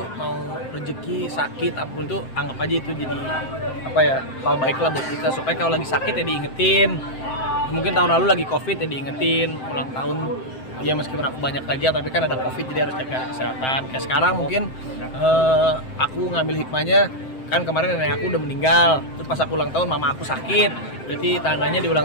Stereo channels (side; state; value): right; late; 7.7 ms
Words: mau rezeki, sakit, apapun tuh anggap aja itu jadi apa ya, hal baik lah buat kita, supaya kalau lagi sakit ya diingetin. Mungkin tahun lalu lagi covid ya diingetin ulang tahun ya, meskipun aku banyak kerja tapi kan ada covid jadi harus jaga kesehatan. Kayak sekarang mungkin aku ngambil hikmahnya, kan kemarin nenek aku udah meninggal, terus pas aku ulang tahun mama aku sakit, berarti tandanya di